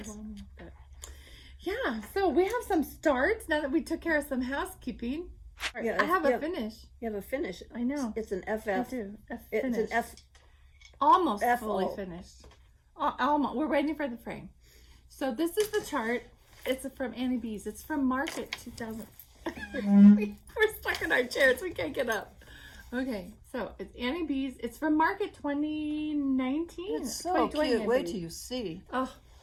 but yeah. So we have some starts now that we took care of some housekeeping. Yeah, I have a finish. You have a finish. I know. It's an I FF. do. It's Finish. an F. Almost FO. fully finished. Almost. We're waiting for the frame. So this is the chart. It's from Annie B's. It's from Market 2000. We're stuck in our chairs. We can't get up. Okay, so it's Annie B's. It's from Market 2019. It's so 2020, cute. I Wait believe. till you see. Oh,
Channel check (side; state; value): both; identical; correlation 1.00